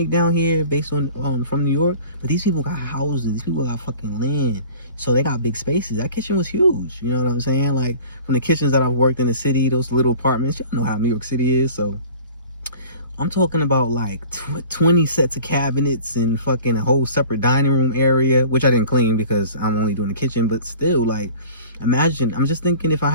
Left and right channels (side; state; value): both; inverted; correlation -0.44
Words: down here based on from New York? But these people got houses. These people got fucking land. So they got big spaces. That kitchen was huge. You know what I'm saying? Like, from the kitchens that I've worked in the city, those little apartments, y'all know how New York City is. So I'm talking about like 20 sets of cabinets and fucking a whole separate dining room area, which I didn't clean because I'm only doing the kitchen. But still, like, imagine, I'm just thinking if I